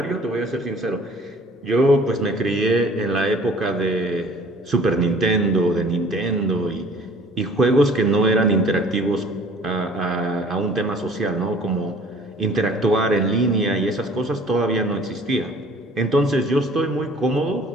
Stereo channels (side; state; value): both; normal; correlation 0.52